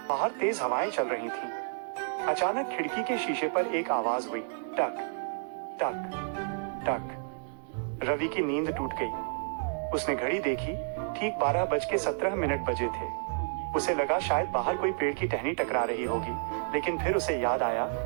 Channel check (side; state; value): left; silent; digital silence